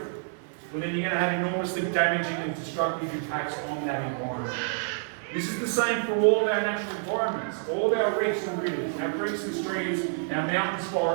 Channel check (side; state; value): left; silent; digital silence